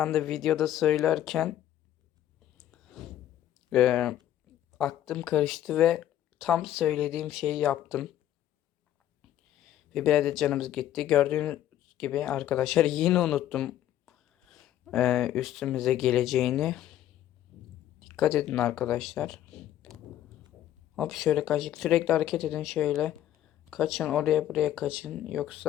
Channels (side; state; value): right; quieter; 12.2 dB